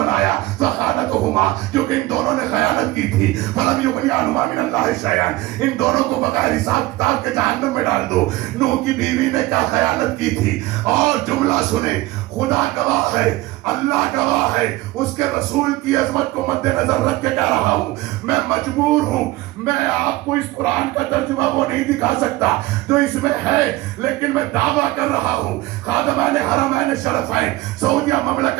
فخانتہما, کیونکہ ان دونوں نے خیانت کی تھی. فلم یغنی عنہما من اللہ شیئا, ان دونوں کو بغیر حساب کتاب کے جہنم میں ڈال دو. نوح کی بیوی نے کیا خیانت کی تھی؟ اور جملہ سنیں, خدا گواہ ہے, اللہ گواہ ہے, اس کے رسول کی عظمت کو مد نظر رکھ کے کہہ رہا ہوں, میں مجبور ہوں, میں آپ کو اس قرآن کا ترجمہ وہ نہیں دکھا سکتا جو اس میں ہے, لیکن میں دعویٰ کر رہا ہوں خادمان حرمین شرفین سعودیہ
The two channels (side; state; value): left; quieter; 18.7 dB